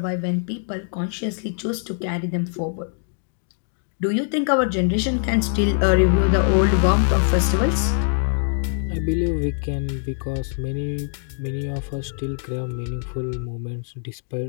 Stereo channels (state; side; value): silent; right; digital silence